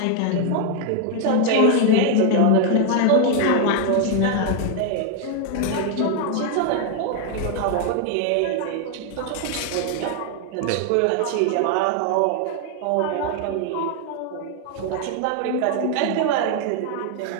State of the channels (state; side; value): different; both; correlation 0.01